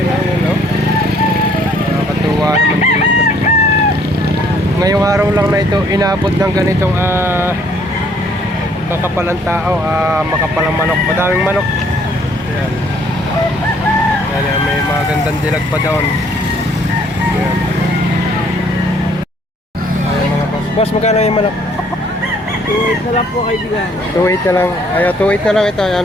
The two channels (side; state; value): both; normal; correlation 0.62